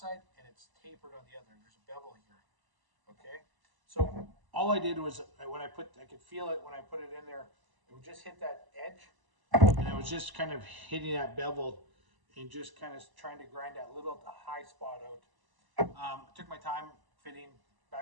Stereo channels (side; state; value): left; late; 1.0 ms